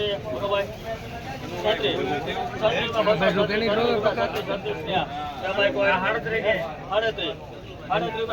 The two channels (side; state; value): both; identical; correlation 1.00